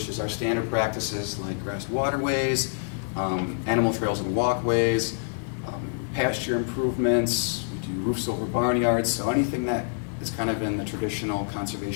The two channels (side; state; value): right; silent; digital silence